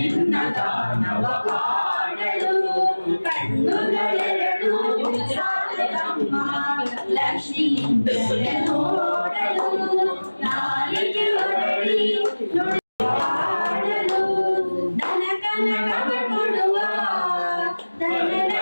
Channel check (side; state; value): both; inverted; correlation -1.00